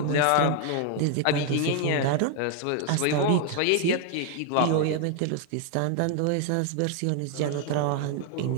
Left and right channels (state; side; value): different; both; correlation 0.00